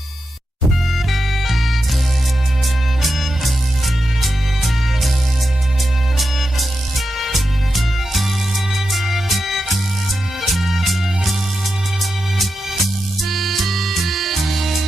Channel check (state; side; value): normal; both; correlation 0.89